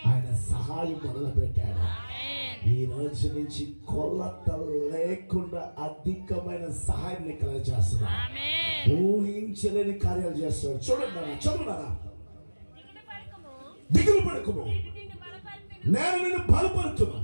ఆయన సహాయం మొదలు పెట్టాడు. ఈ రోజు నుంచి కొలత లేకుండా అధికమైన సహాయాన్ని కలగజేస్తున్నాడు. ఊహించలేని కార్యాలు చేస్తున్నాడు. చూడండి, చదువున్నారా? దిగులు పడకుము, నేను నిన్ను బలపరుతున్నా,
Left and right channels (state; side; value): inverted; both; correlation -1.00